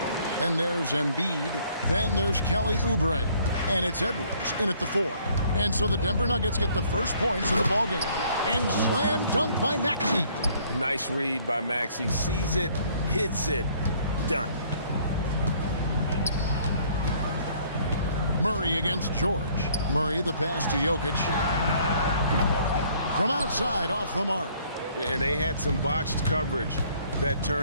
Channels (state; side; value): inverted; both; correlation -0.61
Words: Then there's Embiid. Then there's Kelly Oubre. And it's Edwards in at the 4. And so the Denver Nuggets get the first points in the ballgame. And slam dunk by Maxey. Nice read by Maxey. Sees it, hits it, done. Murray against George. Murray the pass to Jokic. From outside off the mark. And they had some botched coverage that